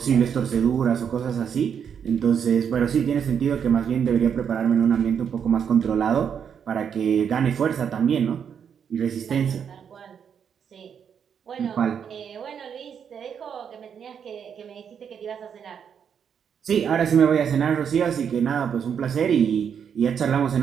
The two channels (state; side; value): quieter; left; 7.6 dB